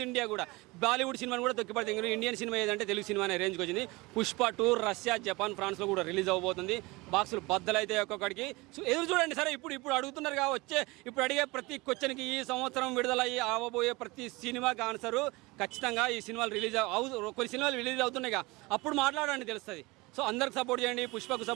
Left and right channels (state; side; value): quieter; left; 23.4 dB